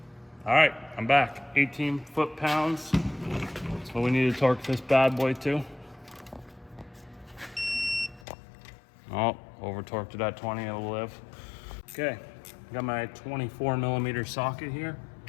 All right, I'm back. 18 foot-pounds. That's what we need to torque this bad boy to. Oh, over torqued it at 20, it'll live. Okay, got my 24 millimeter socket here.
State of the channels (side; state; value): right; drops out; at 8.2 s